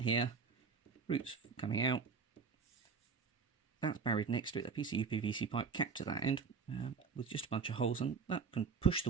here, roots coming out, that's buried next to it, that piece of UPVC pipe capped to that end with just a bunch of holes, and that can push the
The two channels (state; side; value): quieter; left; 5.3 dB